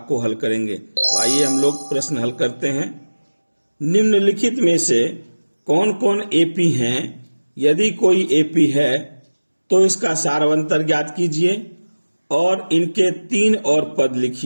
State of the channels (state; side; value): inverted; both; correlation -1.00